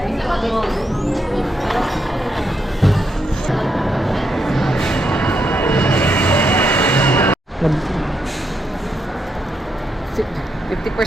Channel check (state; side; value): normal; both; correlation 0.80